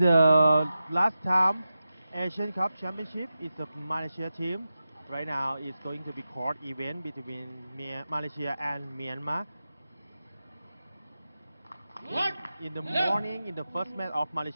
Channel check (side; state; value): both; inverted; correlation -0.92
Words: last time Asian Cup Championship is the Malaysia team. Right now it's going to be court event between Malaysia and Myanmar. In the morning, in the first match of